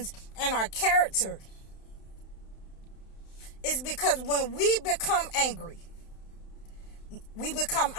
and our character, is because when we become angry, we become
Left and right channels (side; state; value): right; late; 31 ms